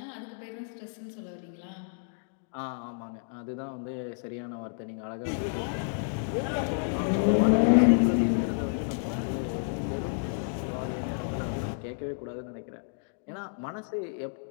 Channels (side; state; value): right; silent; digital silence